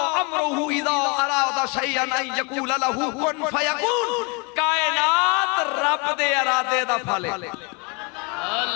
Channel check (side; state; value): right; quieter; 31.9 dB